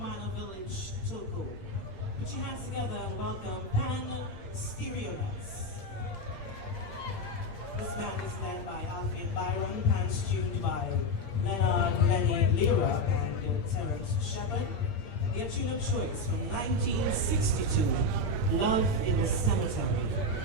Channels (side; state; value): right; late; 8.6 ms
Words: Village, Togo. Put your hands together and welcome Pan Stereonuts. This band is led by Alfie Byron, pans tuned by Leonard Lenny Lira and Terence Shepard. Their tune of choice from 1962, Love in the Cemetery,